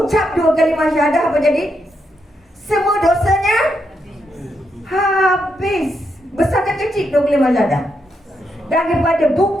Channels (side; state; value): both; normal; correlation 0.81